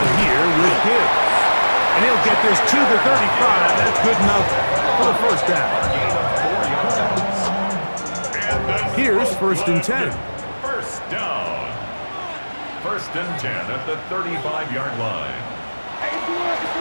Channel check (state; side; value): inverted; both; correlation -1.00